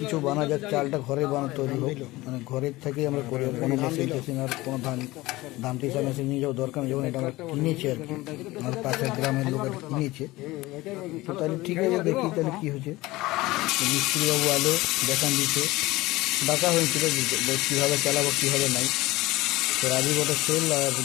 বানা যাক, চালটা ঘরে তৈরি হোক, মানে ঘরের থেকেই আমরা করি, কোনো মেশিন টেশিন আর কোনো ধান টিসা মেশিন নিয়ে যাওয়া দরকার নেই। যখন এটা আমরা কিনেছি আর কি, আমার পাশের গ্রামের লোক আর কিনেছে, তো তাহলে ঠিক আছে, দেখি তাহলে কী হচ্ছে। মিস্ত্রিবাবু আলো দেখান দিচ্ছে, ডাকা হয়েছিল কীভাবে চালাবো কীভাবে নাই। তো রাজীব ওটা সেল আর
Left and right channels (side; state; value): right; quieter; 19.4 dB